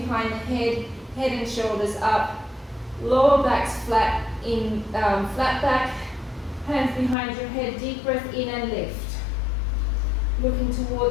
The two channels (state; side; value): drops out; right; at 7.2 s